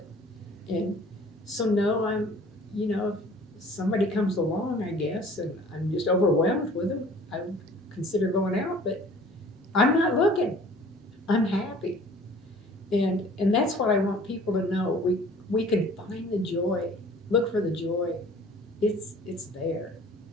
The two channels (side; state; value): both; normal; correlation 0.50